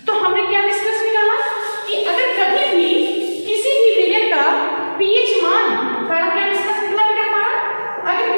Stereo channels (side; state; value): both; inverted; correlation -1.00